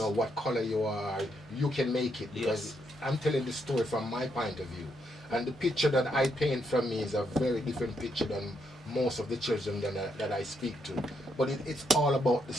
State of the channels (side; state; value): both; normal; correlation 0.77